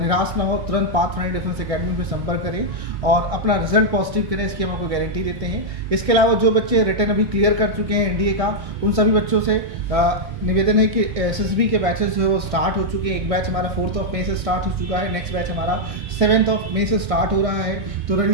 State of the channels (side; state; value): left; late; 1.6 ms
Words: ना हो, तुरंत पाथफाइंडर डिफेंस एकेडमी पे संपर्क करें और अपना रिजल्ट पॉजिटिव करें, इसकी हम आपको गारंटी देते हैं। इसके अलावा जो बच्चे रिटर्न अभी क्लियर कर चुके हैं एनडीए का, उन सभी बच्चों से निवेदन है कि एसएसबी के बैचेस जो है वो स्टार्ट हो चुके हैं। एक बैच हमारा 4 मई से स्टार्ट हो चुका है, नेक्स्ट बैच हमारा 7 मई से स्टार्ट हो रहा है। तो